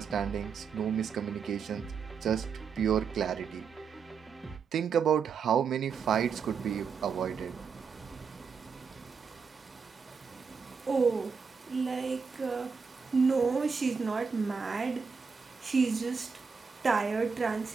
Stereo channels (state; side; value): quieter; left; 5.7 dB